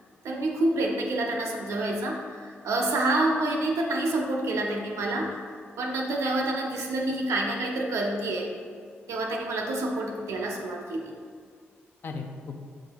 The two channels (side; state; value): both; normal; correlation 0.69